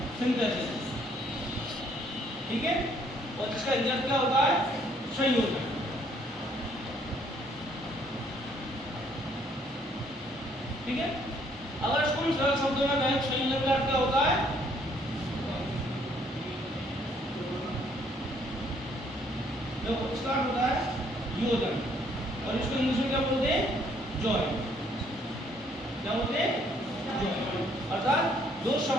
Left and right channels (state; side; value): normal; both; correlation 0.65